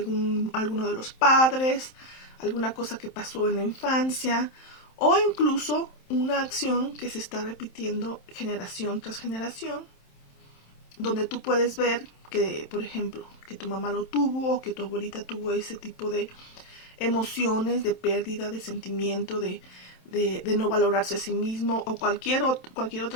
de los padres, alguna cosa que pasó en la infancia, o incluso una acción que se está repitiendo generación tras generación, donde tú puedes ver que, por ejemplo, que tu mamá lo tuvo o que tu abuelita tuvo ese tipo de emociones, de pérdida, de sentimiento, de no valorarse a sí mismo o cualquier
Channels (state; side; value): late; right; 27 ms